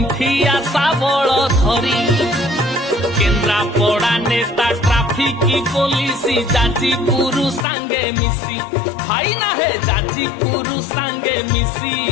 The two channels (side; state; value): right; drops out; at 7.7 s